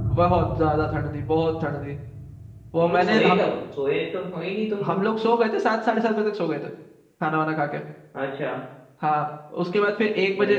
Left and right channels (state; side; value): identical; both; correlation 1.00